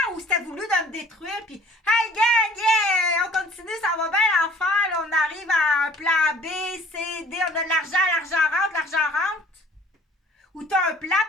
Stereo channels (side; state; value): both; normal; correlation 0.53